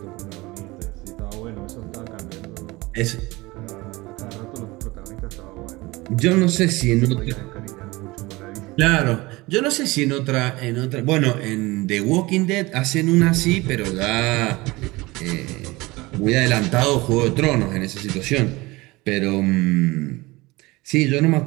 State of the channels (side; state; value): left; quieter; 21.7 dB